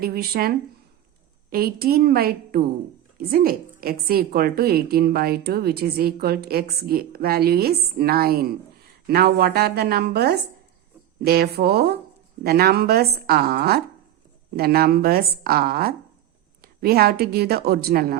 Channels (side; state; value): left; quieter; 11.9 dB